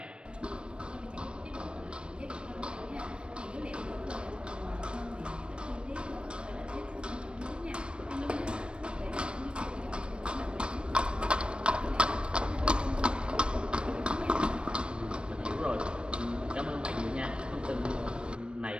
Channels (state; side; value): late; left; 0.056 ms